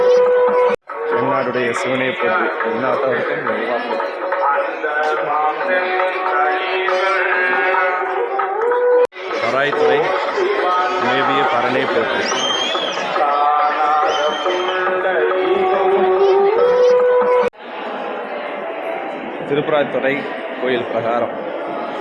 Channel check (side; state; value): both; identical; correlation 1.00